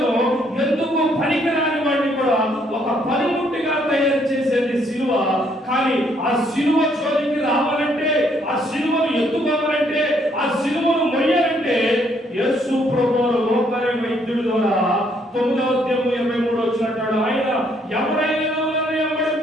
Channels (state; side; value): normal; both; correlation 0.69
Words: ఎందుకు పనికిరాని వాడిని కూడా ఒక పనిముట్టిగా తయారు చేసేది సిలువ. కానీ ఆ సిలువ జోలికి రావాలంటే, ఆ సిలువను ఎత్తుకోవాలంటే, ఆ సిలువను మొయ్యాలంటే యేసు ప్రభువు లోకారి వైద్యుడి ద్వారా 9వ అధ్యాయం 23 వచ్చినట్టు ఆయన ఎవరైనా నన్ను